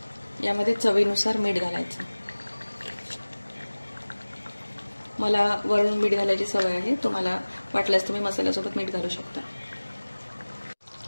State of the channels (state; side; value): inverted; both; correlation -1.00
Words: यामध्ये चवीनुसार मीठ घालायचं. मला वरून मीठ घालायची सवय आहे. तुम्हाला वाटल्यास तुम्ही मसाल्यासोबत मीठ घालू शकता.